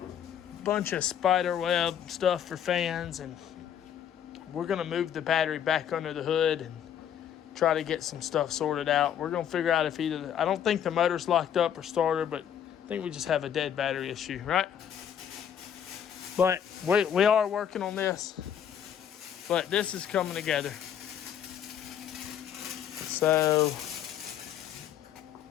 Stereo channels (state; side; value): quieter; right; 9.2 dB